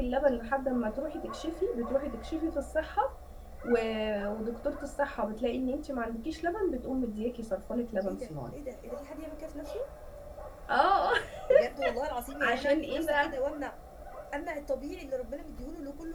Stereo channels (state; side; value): identical; both; correlation 1.00